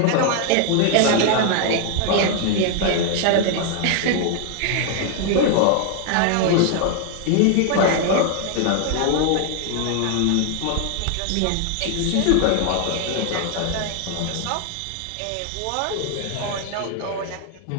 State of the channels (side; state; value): both; different; correlation 0.00